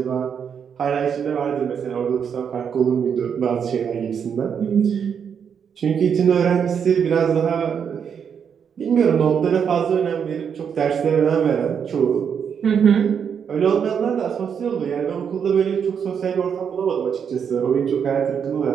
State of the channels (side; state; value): left; quieter; 7.3 dB